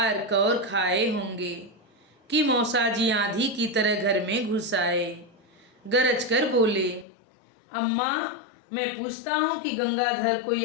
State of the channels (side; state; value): right; drops out; at 7.1 s